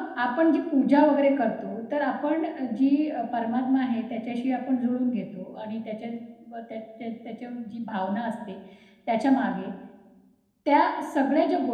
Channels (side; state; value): both; identical; correlation 1.00